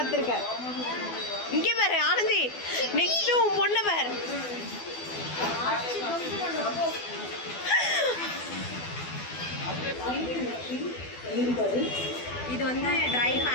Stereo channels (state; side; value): late; right; 12 ms